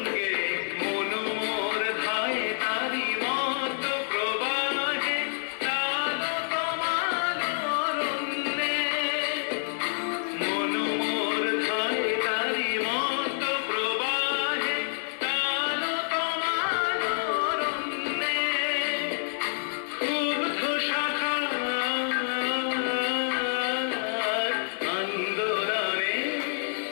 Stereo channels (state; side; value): silent; right; 57 dB below the other